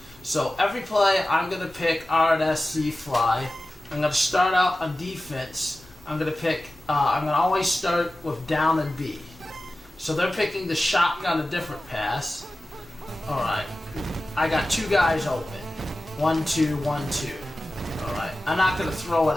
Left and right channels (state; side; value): normal; both; correlation 0.95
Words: So every play I'm gonna pick RNSZ Fly. I'm gonna start out on defense. I'm gonna always start with down and B. So they're picking the shotgun, a different pass. Alright, I got two guys open. 1, 2, 1, 2. Alright, I'm not going to throw